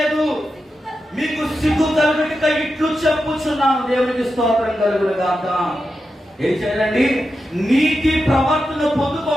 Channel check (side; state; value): both; normal; correlation 0.89